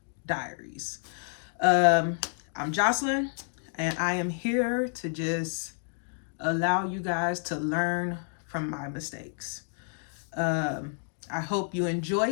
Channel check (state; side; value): silent; right; 58 dB below the other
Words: Diaries. I'm Jocelyn, and I am here to just allow you guys to learn from my mistakes. I hope you enjoy